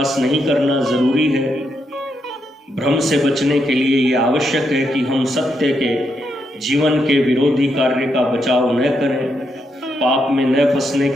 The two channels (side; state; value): both; normal; correlation 0.80